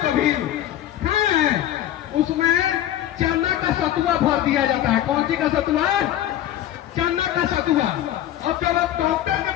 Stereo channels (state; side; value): quieter; right; 12.3 dB